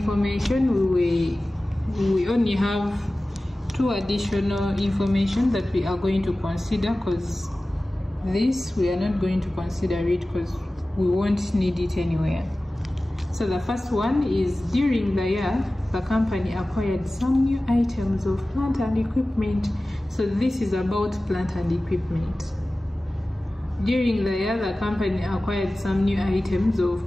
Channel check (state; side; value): normal; both; correlation 0.97